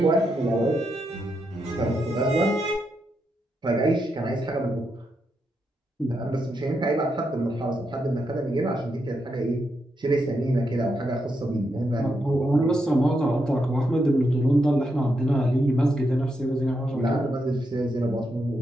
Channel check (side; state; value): both; normal; correlation 0.82